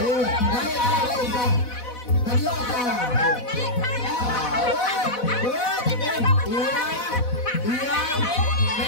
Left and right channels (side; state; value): right; late; 4.1 ms